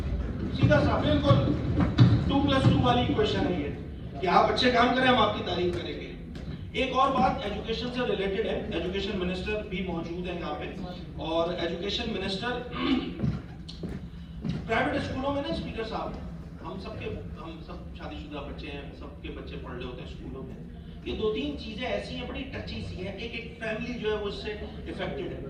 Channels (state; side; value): identical; both; correlation 1.00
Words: सीधा सा बिल्कुल 2+2 वाली इक्वेशन है ये, कि आप अच्छे काम करें हम आपकी तारीफ करेंगे। एक और बात एजुकेशन से रिलेटेड है, एजुकेशन मिनिस्टर भी मौजूद है यहाँ पे, और एजुकेशन मिनिस्टर प्राइवेट स्कूलों में ना स्पीकर साहब हम सब शादीशुदा बच्चे हैं, सबके बच्चे पढ़ रहे होते हैं स्कूलों में, ये 2-3 चीजें ऐसी हैं बड़ी टची सी हैं, एक फैमिली जो है वो इससे इफेक्टेड है।